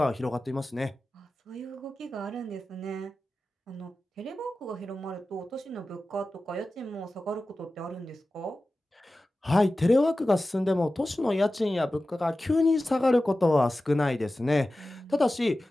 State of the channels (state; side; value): normal; both; correlation 0.95